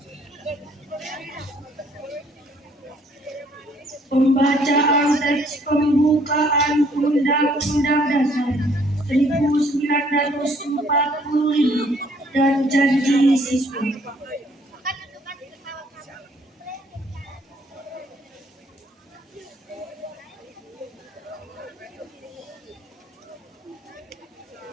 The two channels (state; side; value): normal; both; correlation 0.63